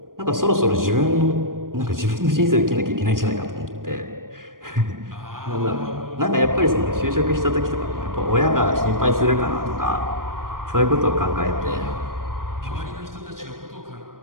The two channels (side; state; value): left; late; 0.91 ms